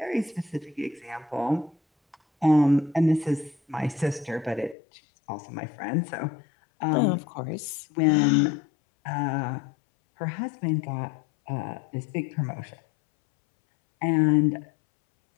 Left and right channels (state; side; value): drops out; right; at 4.8 s